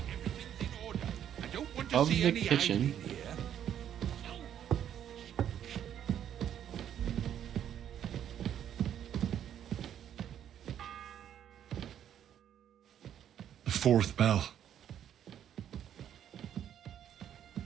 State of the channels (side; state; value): left; quieter; 9.9 dB